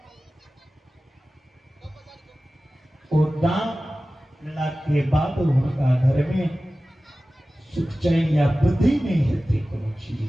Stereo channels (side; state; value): both; normal; correlation 0.96